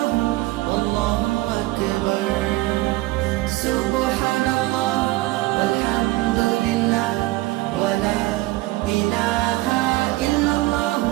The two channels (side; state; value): left; quieter; 19.3 dB